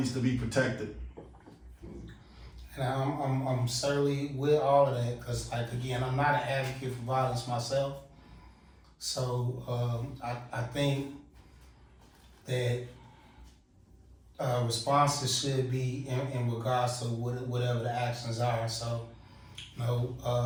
to be protected. And I'm certainly with all of that, because again, I'm not an advocate for violence myself. So I think that responses should be in regards to whatever the actions are. So,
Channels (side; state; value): both; identical; correlation 1.00